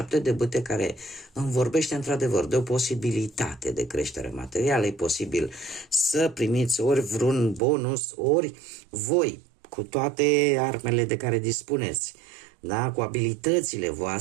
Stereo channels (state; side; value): drops out; left; at 7.6 s